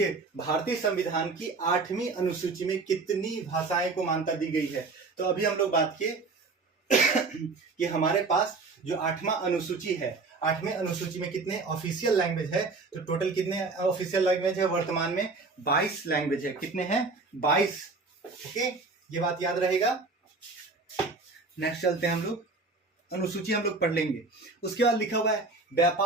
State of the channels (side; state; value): left; quieter; 3.8 dB